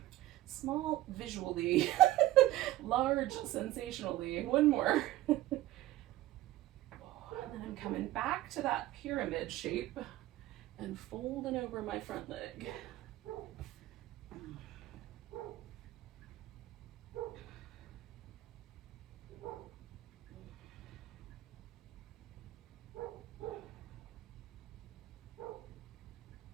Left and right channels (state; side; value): quieter; left; 15.5 dB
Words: Small visually, large sensationally. One more. And then I'm coming back to that pyramid shape and folding over my front leg.